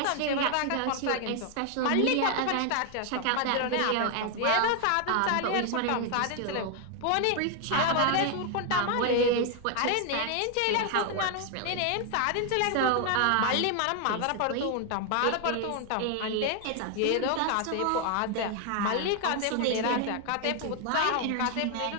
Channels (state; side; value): different; both; correlation 0.00